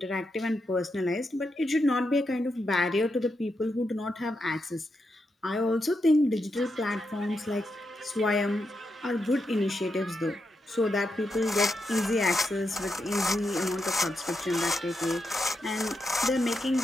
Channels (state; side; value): normal; both; correlation 0.84